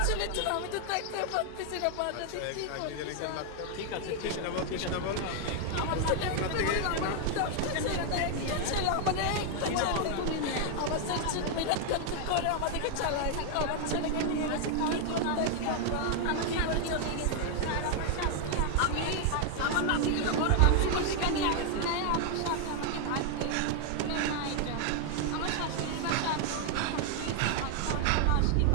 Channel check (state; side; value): different; both; correlation 0.00